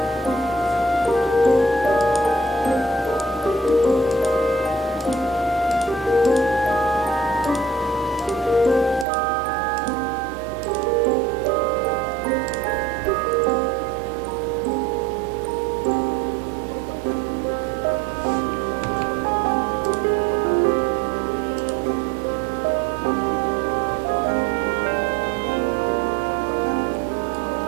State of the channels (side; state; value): left; drops out; at 9.1 s